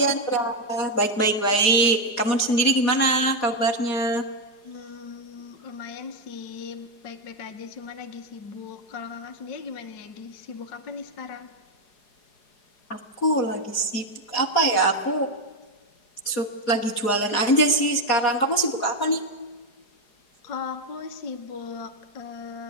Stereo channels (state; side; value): late; right; 4.8 ms